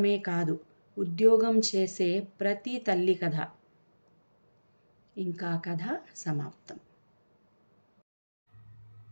కాదు, ఉద్యోగం చేసే ప్రతి తల్లి కథ. ఇంకా కథ సమాప్తం.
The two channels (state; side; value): inverted; both; correlation -1.00